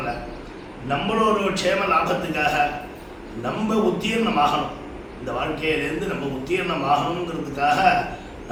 நம்மளோட க்ஷேம லாபத்துக்காக நம்ம உத்தீர்ணம் ஆகணும், இந்த வாழ்க்கையிலேருந்து நம்ம உத்தீர்ணம் ஆகணுங்கிறதுக்காக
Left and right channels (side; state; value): both; identical; correlation 1.00